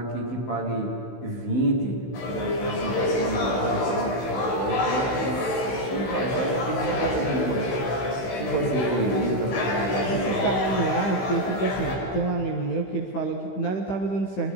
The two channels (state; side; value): late; right; 16 ms